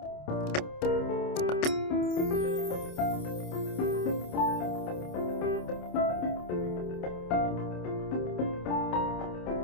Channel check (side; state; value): right; late; 28 ms